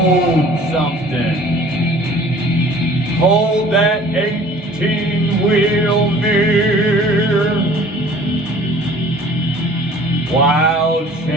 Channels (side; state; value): both; normal; correlation 0.50